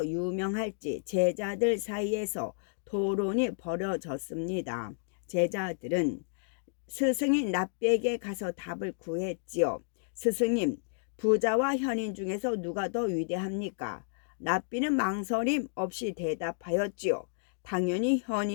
유명할지 제자들 사이에서 토론이 벌어졌습니다. 제자들은 스승인 납비에게 가서 답을 구했지요. 스승님, 부자와 현인 중에서 누가 더 위대합니까? 납비는 망설임 없이 대답하였지요. 당연히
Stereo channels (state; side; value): silent; right; digital silence